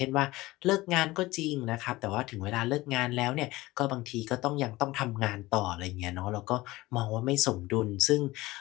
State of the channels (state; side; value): quieter; right; 19.3 dB